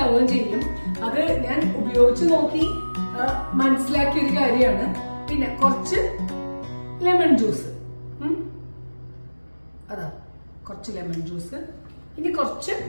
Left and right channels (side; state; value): both; inverted; correlation -1.00